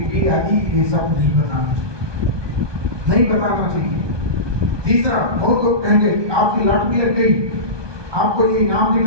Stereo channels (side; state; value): left; late; 1.2 ms